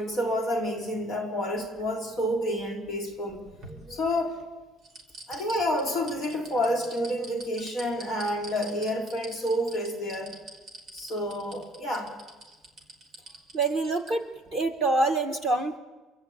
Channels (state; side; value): normal; both; correlation 0.57